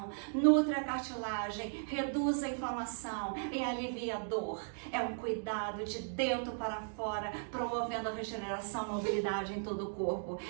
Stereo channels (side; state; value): left; silent; digital silence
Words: nutre a cartilagem, reduz a inflamação e alivia a dor. É um cuidado de dentro para fora, promovendo a regeneração e mobilidade em todo o corpo.